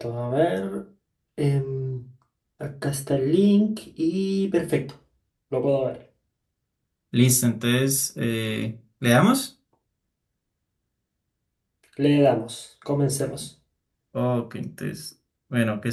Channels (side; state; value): both; identical; correlation 1.00